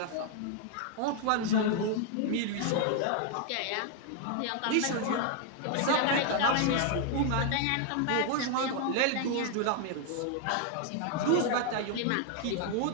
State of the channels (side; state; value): both; different; correlation 0.00